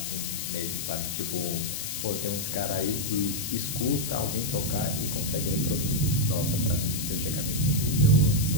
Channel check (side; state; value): left; noise; hiss, 4 dB below the sound